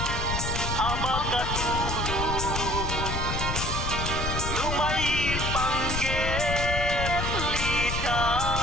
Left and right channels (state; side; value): noise; left; rumble, 2 dB below the sound